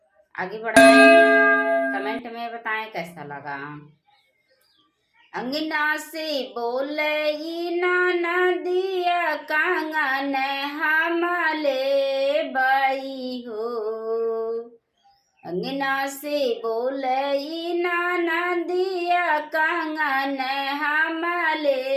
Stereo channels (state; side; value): identical; both; correlation 1.00